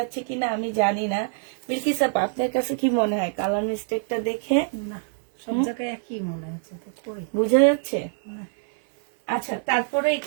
কিনা আমি জানি না। বিলকিস আপা আপনার কাছে কি মনে হয় কালার মিস্টেকটা দেখে? না, সব জায়গায় একই মনে হচ্ছে তো, কই বোঝা যাচ্ছে? না। আচ্ছা তারপরে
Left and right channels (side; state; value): left; silent; 62 dB below the other